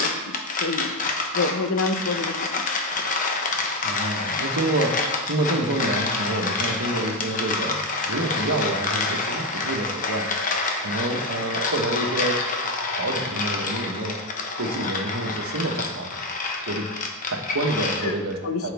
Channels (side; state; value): both; normal; correlation 0.09